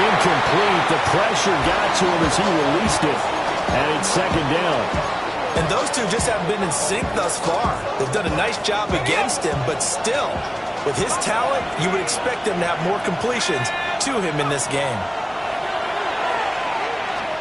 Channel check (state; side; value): identical; both; correlation 1.00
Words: incomplete. The pressure got to him as he released it. And it's 2nd down. And those two just haven't been in sync thus far. They've done a nice job against him, but still, with his talent, you would expect him to have more completions to him in this game.